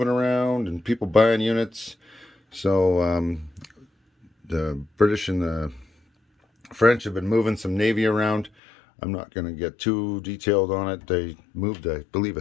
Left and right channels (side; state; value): right; drops out; at 8.5 s